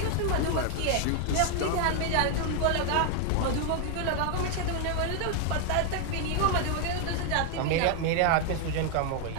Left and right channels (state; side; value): different; both; correlation 0.00